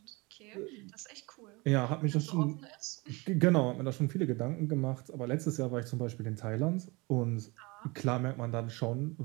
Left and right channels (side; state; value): left; quieter; 25.8 dB